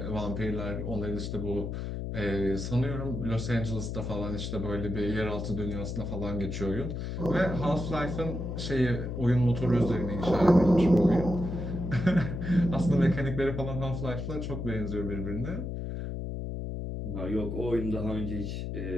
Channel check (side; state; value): left; noise; hum, 4 dB below the sound